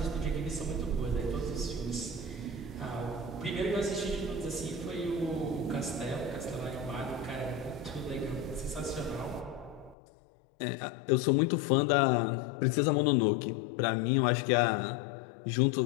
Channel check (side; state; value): right; drops out; at 10.0 s